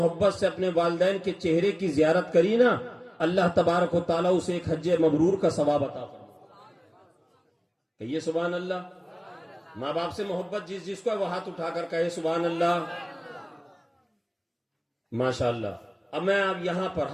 سے اپنے والدین کے چہرے کی زیارت کری نا، اللہ تبارک و تعالیٰ اسے ایک حج مبرور کا ثواب عطا فرمائے۔ کہیے سبحان اللہ۔ ماں باپ سے محبت جس کو ہے وہ ہاتھ اٹھا کر کہے سبحان اللہ۔ ماشاءاللہ۔ اب میں اب یہاں پر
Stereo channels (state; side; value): identical; both; correlation 1.00